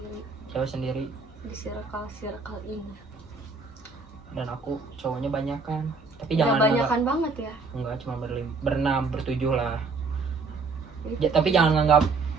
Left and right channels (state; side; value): quieter; left; 4.4 dB